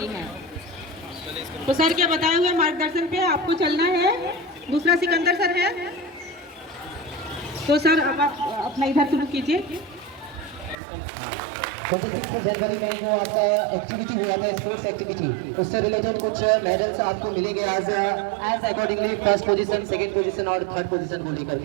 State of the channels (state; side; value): drops out; left; at 10.8 s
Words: है। तो सर के बताए हुए मार्गदर्शन पे आपको चलना है। दूसरा सिकंदर सर है, तो सर अब आप अपना इधर शुरू कीजिए। 26 जनवरी में जो आपका एक्टिविटी हुआ था, स्पोर्ट्स एक्टिविटी, उससे रिलेटेड कुछ मेडल्स आपको मिलेंगे as accordingly first position, second position और थर्ड पोजीशन को लेकर